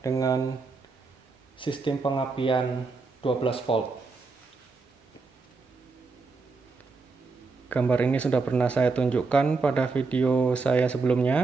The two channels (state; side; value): quieter; left; 4.2 dB